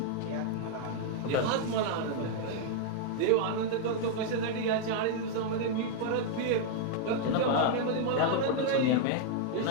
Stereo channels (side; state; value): both; different; correlation 0.00